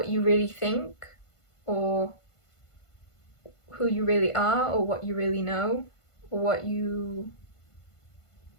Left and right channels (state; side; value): late; right; 1.5 ms